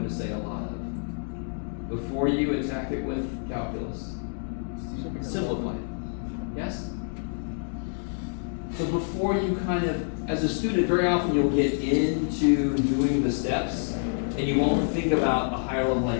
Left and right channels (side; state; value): right; silent; 57 dB below the other